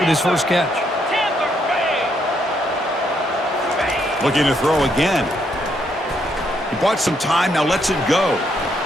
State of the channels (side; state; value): both; normal; correlation 0.74